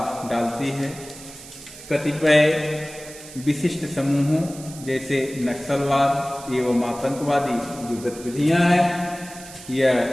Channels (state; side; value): noise; right; hiss, 16 dB below the sound